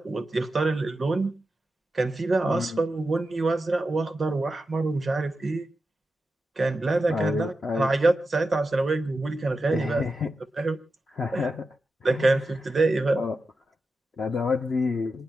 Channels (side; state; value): both; normal; correlation 0.90